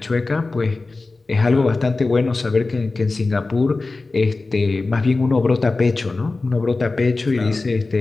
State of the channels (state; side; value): quieter; right; 3.5 dB